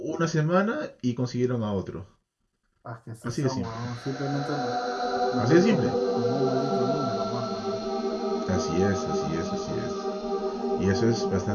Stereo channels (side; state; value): both; identical; correlation 1.00